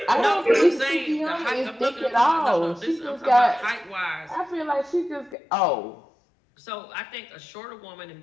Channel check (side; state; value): right; drops out; at 5.4 s